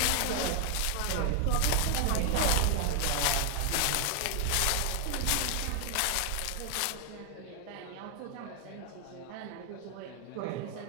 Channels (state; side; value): different; both; correlation 0.00